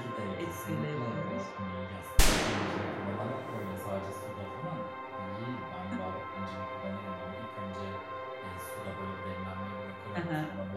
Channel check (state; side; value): identical; both; correlation 1.00